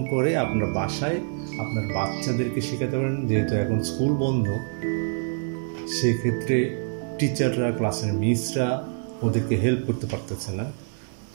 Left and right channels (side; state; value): left; silent; 61 dB below the other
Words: করে আপনার বাসায় আপনার বাচ্চাদেরকে শেখাতে পারেন। যেহেতু এখন স্কুল বন্ধ, সেক্ষেত্রে টিচাররা, ক্লাসের মিসরা ওদেরকে হেল্প করতে পারতেছে না।